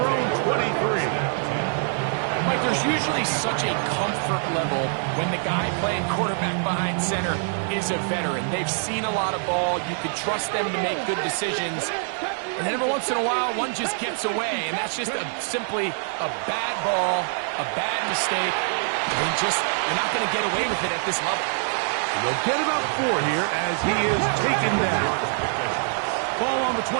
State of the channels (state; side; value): silent; left; 62 dB below the other